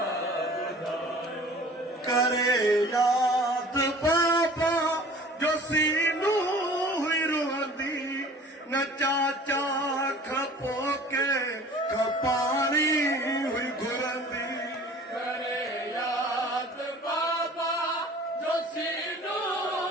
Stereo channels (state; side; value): normal; both; correlation 0.46